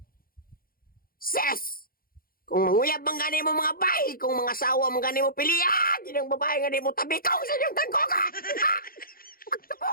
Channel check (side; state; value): right; late; 0.42 ms